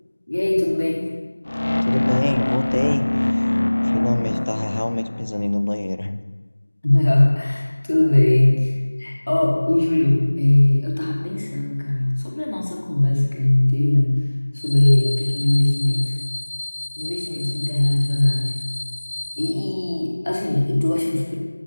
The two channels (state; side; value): inverted; both; correlation -1.00